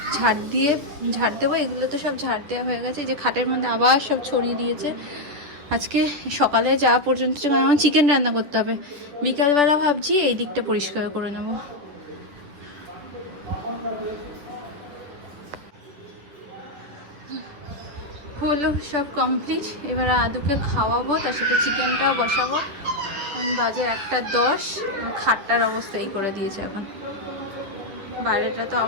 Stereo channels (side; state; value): left; late; 10 ms